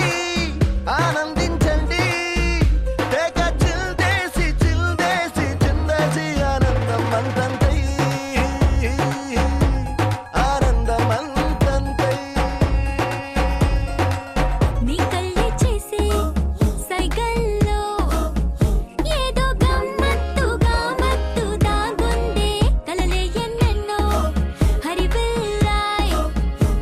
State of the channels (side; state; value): both; identical; correlation 1.00